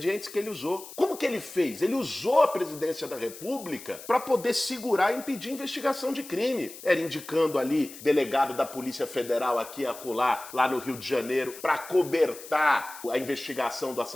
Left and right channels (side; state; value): left; noise; hiss, 15 dB below the sound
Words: que ele usou. Como que ele fez? Ele usou a presidência da República para poder segurar e impedir investigação de crime. Era indicando ali delegado da Polícia Federal aqui a acolá, lá no Rio de Janeiro, para cobertar a investigação do